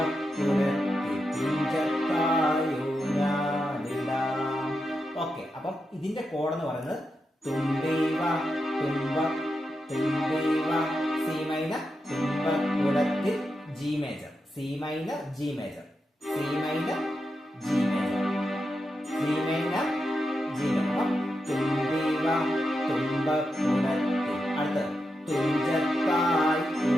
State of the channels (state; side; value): normal; both; correlation 0.87